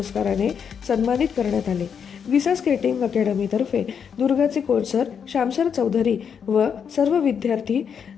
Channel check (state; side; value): quieter; right; 7.2 dB